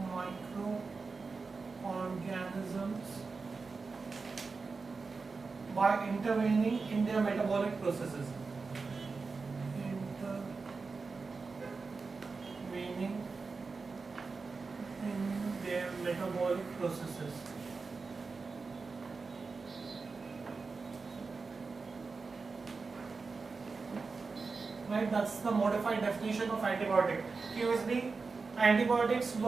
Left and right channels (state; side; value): quieter; left; 4.4 dB